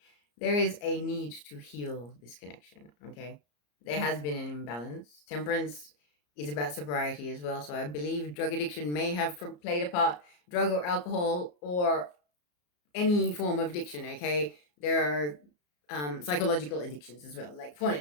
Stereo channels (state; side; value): late; right; 34 ms